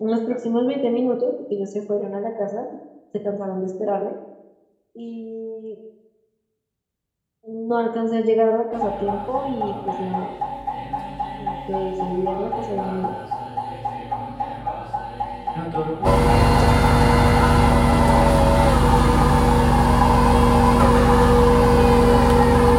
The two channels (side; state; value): both; identical; correlation 1.00